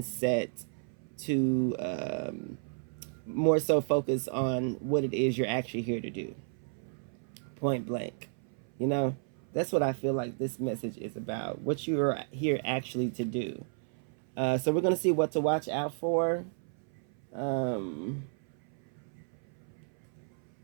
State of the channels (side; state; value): left; silent; 56 dB below the other